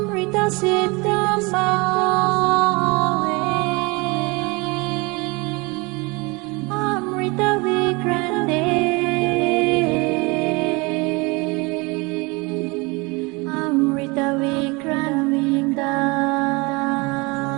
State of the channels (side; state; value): left; quieter; 26.9 dB